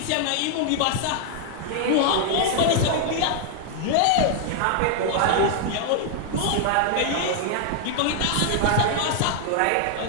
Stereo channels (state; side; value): different; both; correlation 0.00